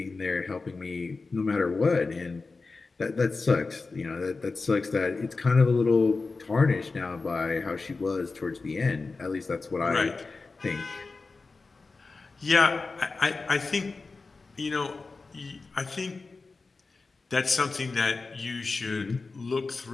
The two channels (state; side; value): quieter; right; 4.0 dB